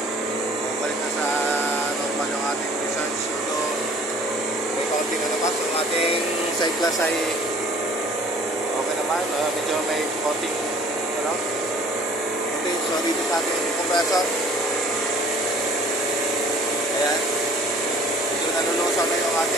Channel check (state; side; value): normal; both; correlation 0.52